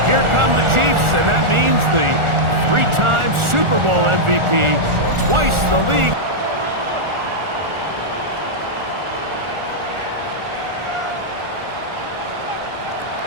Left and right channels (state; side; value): late; left; 1.4 ms